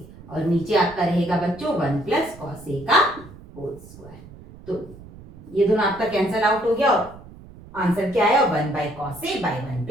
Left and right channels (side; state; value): right; noise; rumble, 19 dB below the sound